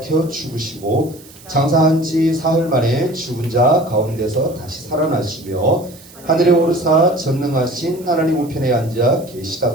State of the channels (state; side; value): noise; right; hiss, 22 dB below the sound